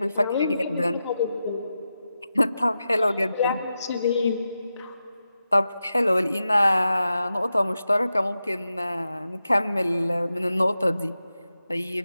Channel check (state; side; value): inverted; both; correlation -0.90